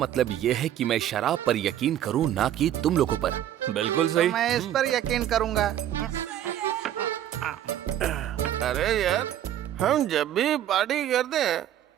ये है कि मैं शराब पर यकीन करूं, ना कि तुम लोगों पर? बिल्कुल सही। मैं इस पर यकीन करूंगा। अरे यार, हम जब भी पार्टी करते हैं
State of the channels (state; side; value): quieter; left; 11.5 dB